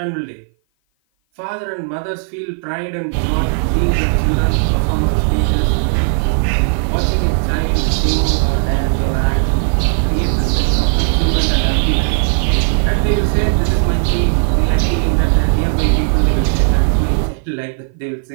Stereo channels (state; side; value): silent; left; 55 dB below the other